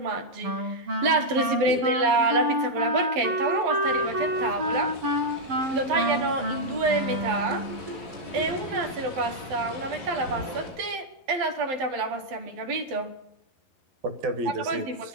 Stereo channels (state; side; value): late; left; 12 ms